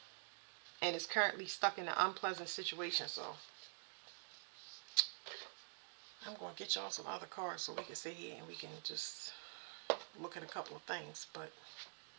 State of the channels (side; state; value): left; silent; digital silence